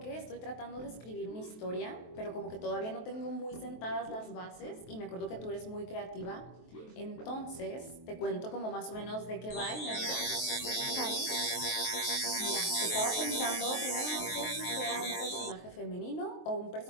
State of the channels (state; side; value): late; right; 23 ms